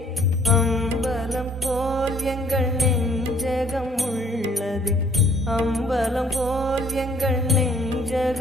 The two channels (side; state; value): both; normal; correlation 0.60